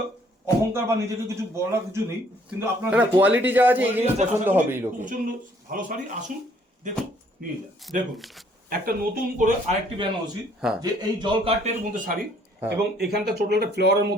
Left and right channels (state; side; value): normal; both; correlation 0.63